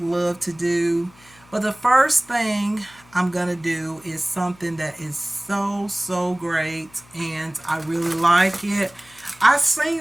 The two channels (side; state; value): left; noise; hum, 27 dB below the sound